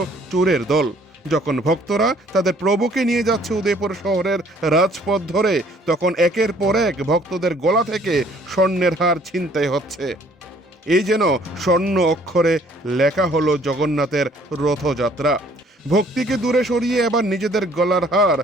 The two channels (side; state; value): both; normal; correlation 0.59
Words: চোরের দল। যখন ভক্তরা তাদের প্রভুকে নিয়ে যাচ্ছে উদয়পুর শহরের রাজপথ ধরে, তখন একের পর এক ভক্তদের গলা থেকে স্বর্ণের হার ছিনতাই হচ্ছে। এই যেন স্বর্ণ অক্ষরে লেখা হলো জগন্নাথের রথযাত্রা। ভক্তিকে দূরে সরিয়ে এবার নিজেদের গলার হার